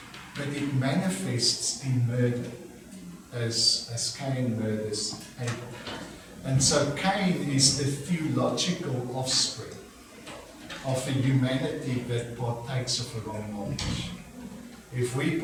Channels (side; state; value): both; identical; correlation 1.00